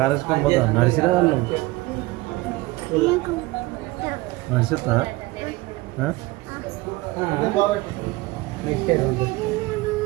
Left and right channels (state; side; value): quieter; left; 20.7 dB